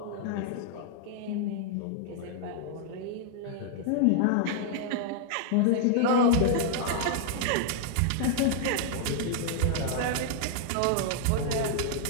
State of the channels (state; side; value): different; both; correlation -0.01